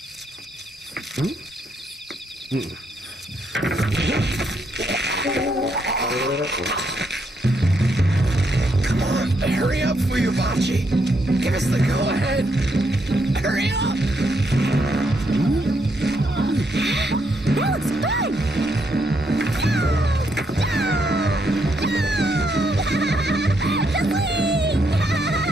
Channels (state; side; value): normal; both; correlation 0.77